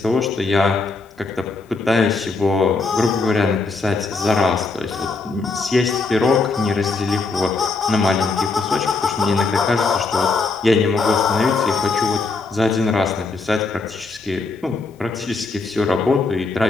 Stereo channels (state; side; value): quieter; right; 3.9 dB